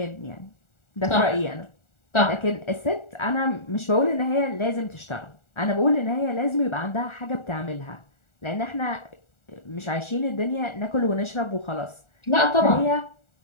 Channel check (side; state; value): right; late; 1.4 ms